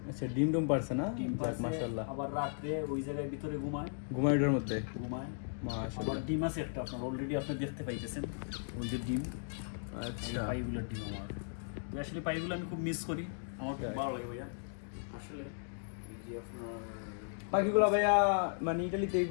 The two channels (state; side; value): silent; right; digital silence